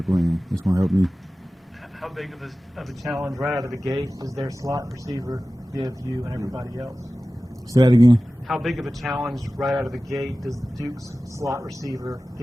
and it's gonna help me. How big of a challenge right out of the gate does their slot receiver give you and everybody else? Say that again. How big of a challenge right out of the gate does Duke's slot receiver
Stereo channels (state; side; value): normal; both; correlation 0.96